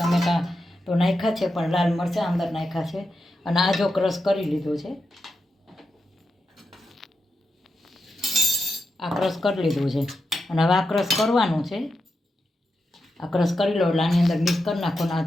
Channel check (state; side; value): normal; both; correlation 0.87